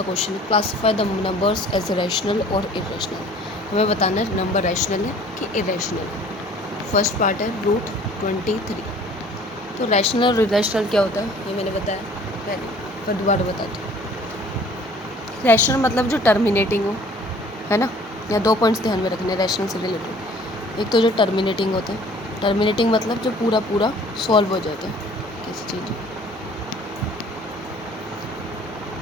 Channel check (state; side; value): normal; both; correlation 0.52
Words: क्वेश्चन है, classify the numbers as rational और इरेशनल। हमें बताना है नंबर रैशनल है कि इरेशनल है। फर्स्ट पार्ट है रूट 23। तो रैशनल और इरेशनल क्या होता है ये मैंने बताया पहले, पर दोबारा बताती हूँ। रैशनल मतलब जो टर्मिनेटिंग हो, है ना। या दो पॉइंट्स ध्यान में रखने रैशनल से रिलेटेड। एक तो जो टर्मिनेटिंग होता है, टर्मिनेटिंग मतलब जो पूरा पूरा सॉल्व हो जाता है किसी चीज़,